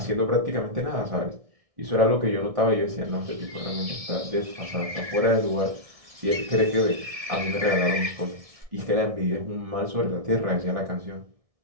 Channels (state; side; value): late; left; 1.6 ms